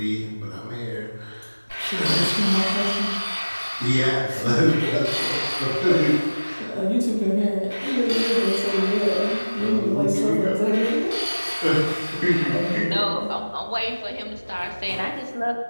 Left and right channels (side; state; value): both; inverted; correlation -1.00